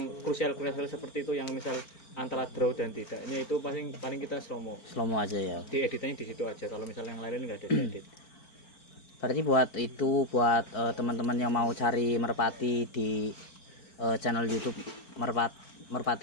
krusial seperti itu yang misal antara draw dan tidaknya itu paling kita slow mo aja ya. di editannya di situ aja. Kalau misalnya yang lain nggak ada diedit. Berarti buat teman-teman yang mau cari merpati di channel YouTube Merpati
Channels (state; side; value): late; right; 4.4 ms